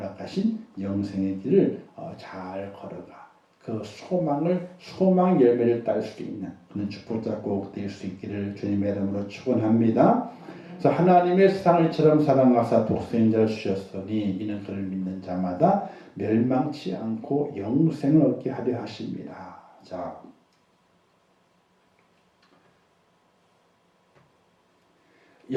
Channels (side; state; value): both; identical; correlation 1.00